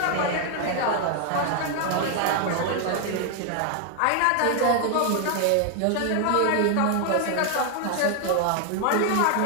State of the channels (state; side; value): different; both; correlation 0.00